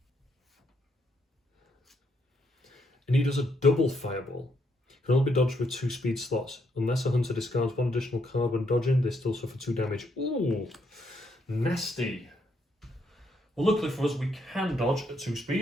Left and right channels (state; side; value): normal; both; correlation 0.75